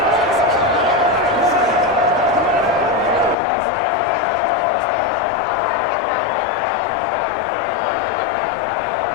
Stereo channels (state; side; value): drops out; right; at 3.4 s